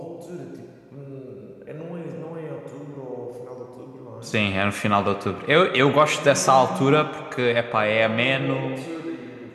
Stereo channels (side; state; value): both; identical; correlation 1.00